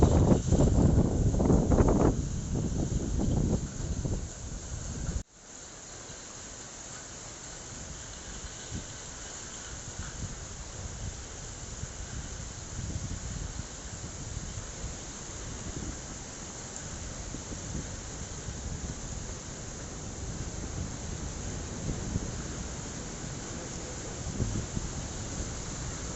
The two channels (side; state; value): both; identical; correlation 1.00